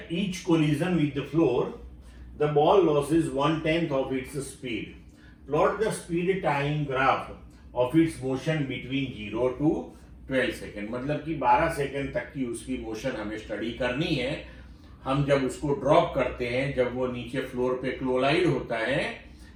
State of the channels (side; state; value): both; identical; correlation 1.00